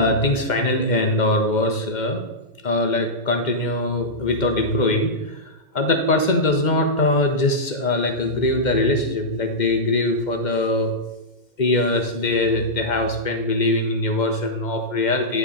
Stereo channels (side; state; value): right; late; 2.1 ms